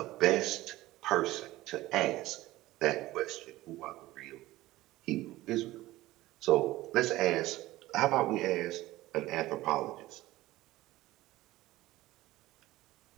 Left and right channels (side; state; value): left; quieter; 17.2 dB